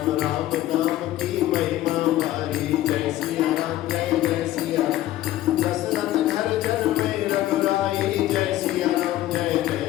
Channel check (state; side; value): quieter; right; 14.5 dB